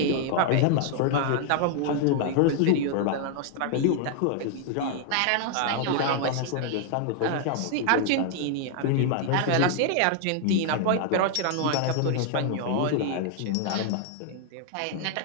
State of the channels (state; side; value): different; both; correlation 0.00